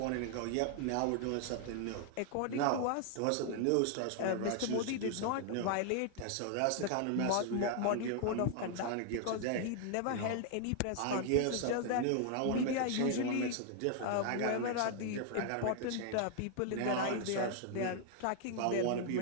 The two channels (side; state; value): both; different; correlation 0.00